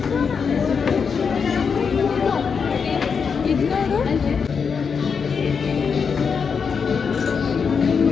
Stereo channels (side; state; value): right; quieter; 6.0 dB